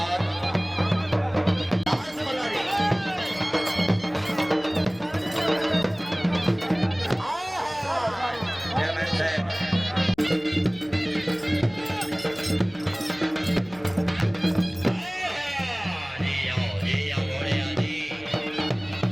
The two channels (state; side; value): noise; left; hum, 27 dB below the sound